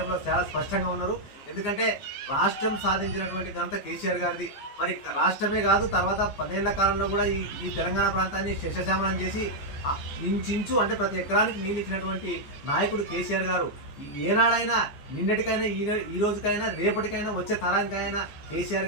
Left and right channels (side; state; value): right; late; 15 ms